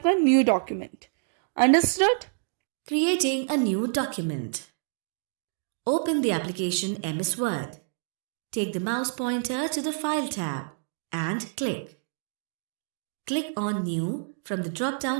new document. Understood. Creating a new document. Open the application MS Word. Take the mouse pointer to the File tab and click. Click on New from the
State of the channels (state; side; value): silent; left; digital silence